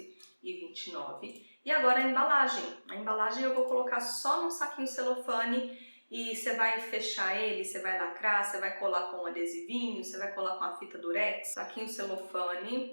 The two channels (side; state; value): both; inverted; correlation -1.00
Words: E agora a embalagem. A embalagem eu vou colocar só num saquinho celofane e você vai fechar ele, você vai lacrar, você vai colar com um adesivinho, você vai colar com a fita durex, saquinho celofane,